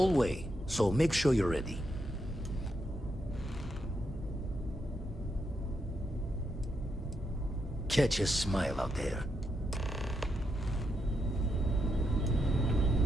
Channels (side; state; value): both; normal; correlation 0.82